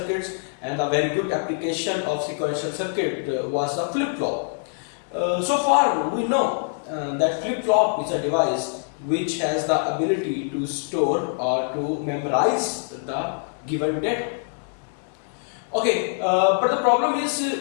and a very good application of sequential circuit was the flip-flop. So far we know that flip-flop is a device which has the ability to store or to memorize the given data. Okay, but the problem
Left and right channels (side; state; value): right; silent; digital silence